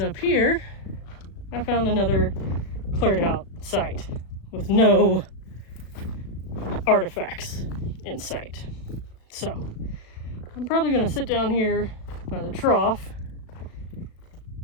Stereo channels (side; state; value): right; late; 37 ms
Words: here, I found another cleared out site with no artifacts in sight. So, I'm probably going to sit down here by the trough,